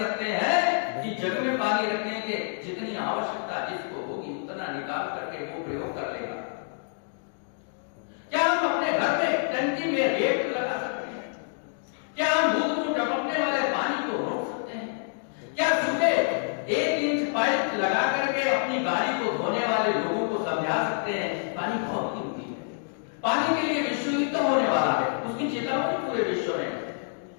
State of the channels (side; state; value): right; silent; digital silence